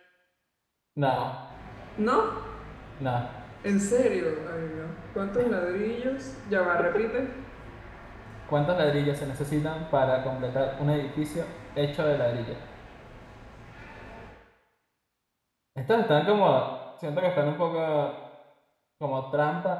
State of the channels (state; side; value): identical; both; correlation 1.00